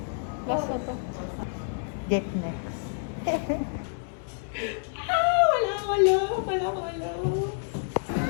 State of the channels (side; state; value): right; silent; 59 dB below the other